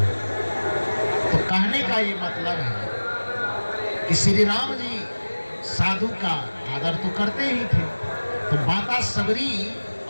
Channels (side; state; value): both; inverted; correlation -1.00